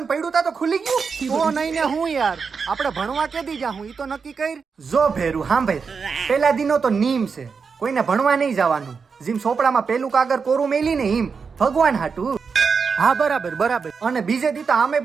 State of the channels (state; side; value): quieter; left; 5.5 dB